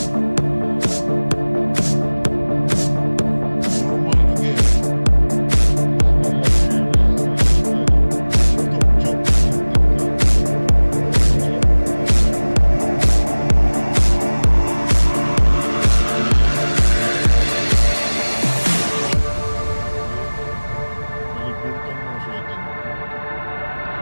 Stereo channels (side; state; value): both; inverted; correlation -1.00